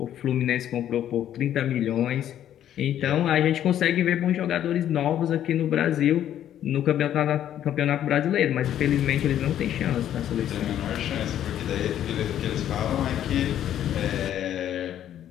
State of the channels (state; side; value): quieter; right; 11.0 dB